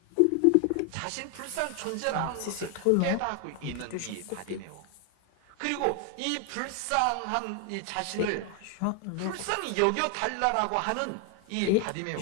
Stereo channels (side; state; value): both; different; correlation 0.00